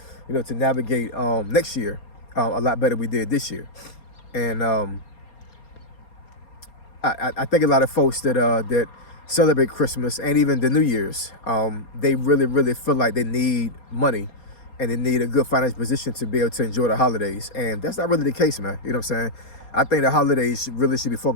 you know, to navigate next year a lot better than we did this year. And I think a lot of folks that celebrate Christmas and even the New Year's, they really feel like they need money and they need a good financial position to be able to enjoy the holidays. And that's not really the case, man. You know what I'm saying? I think the holidays really should be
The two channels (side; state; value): right; late; 4.3 ms